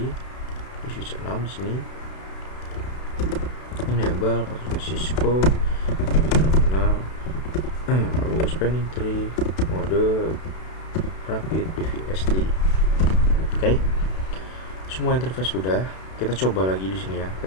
di switch 6 di sini. Enable passwordnya Cisco, config terminal. Lalu spanning tree mode rapid PVST. Oke, semua interface sudah. Kita coba lagi di sini ya.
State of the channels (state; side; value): late; right; 32 ms